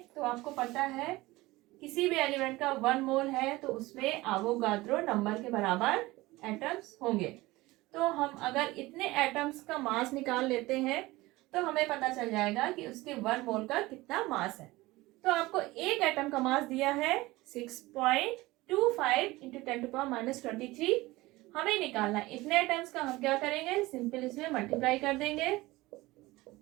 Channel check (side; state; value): left; quieter; 19.8 dB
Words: तो आपको पता है किसी भी एलिमेंट का 1 मोल है तो उसमें एवोगाड्रो नंबर के बराबर एटम्स होंगे। तो हम अगर इतने एटम्स का मास निकाल लेते हैं तो हमें पता चल जाएगा कि उसके 1 मोल का कितना मास है। तो आपको एक एटम का मास दिया है 6.25 इंटू 10⁻23। हमें निकालना है इतने एटम्स का। हम क्या करेंगे, सिंपल इसमें मल्टीप्लाई कर देंगे।